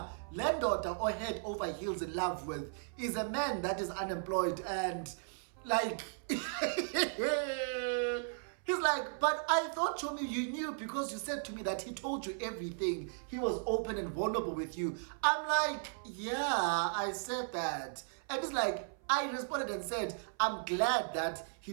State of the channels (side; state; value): left; silent; 54 dB below the other